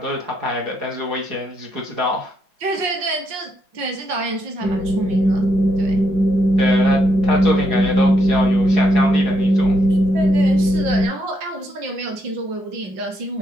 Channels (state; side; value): late; left; 5.6 ms